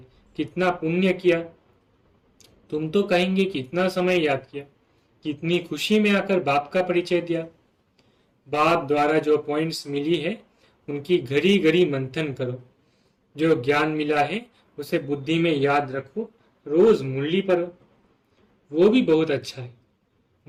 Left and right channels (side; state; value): both; identical; correlation 1.00